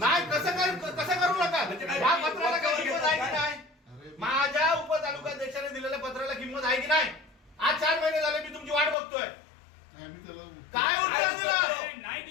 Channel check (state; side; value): drops out; right; at 9.0 s